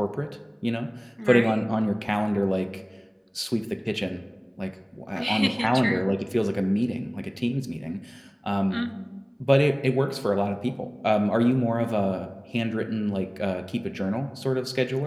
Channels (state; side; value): identical; both; correlation 1.00